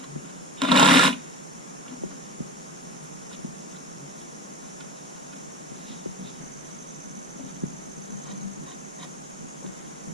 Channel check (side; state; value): both; normal; correlation 0.29